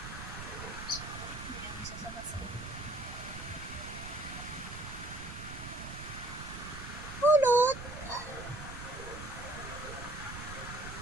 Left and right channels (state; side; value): noise; right; rumble, 10 dB below the sound